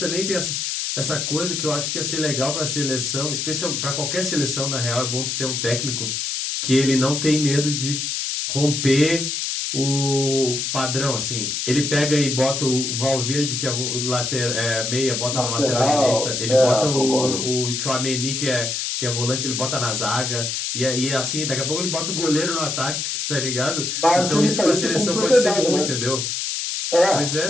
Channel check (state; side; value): noise; left; hiss, 2 dB below the sound